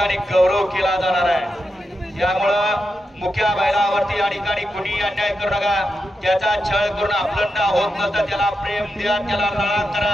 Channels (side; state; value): both; normal; correlation 0.88